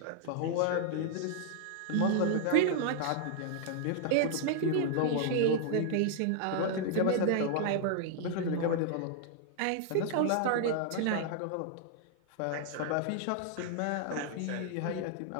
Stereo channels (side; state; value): both; different; correlation -0.01